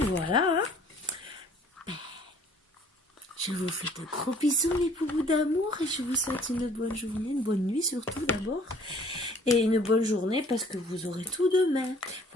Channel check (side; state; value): both; normal; correlation 0.54